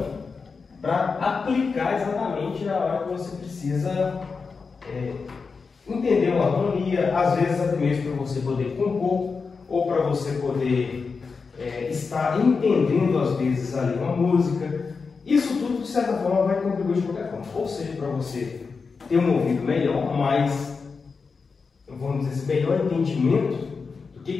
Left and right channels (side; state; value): right; quieter; 4.9 dB